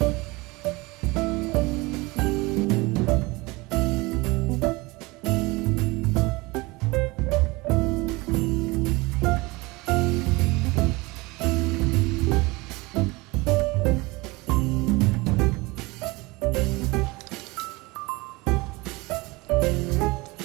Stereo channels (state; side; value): quieter; left; 23.4 dB